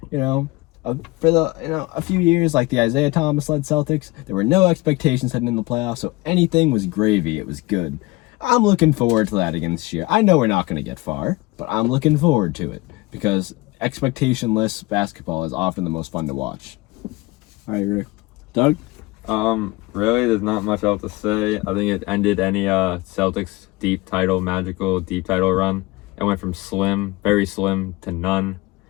for a few years, like the Isaiah Thomas-led Celtics, there were no expectations heading in the playoffs, so anything was gravy. It was good. I'm looking forward to that again this year. I know we're not going to get far, but I'm looking forward to it because expectationless basketball is often the most fun to watch. I agree. Doug? Really, there's not much else to say. I think it ended any Celtics magical deep title run. It went from slim, very slim, to none.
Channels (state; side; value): quieter; right; 21.7 dB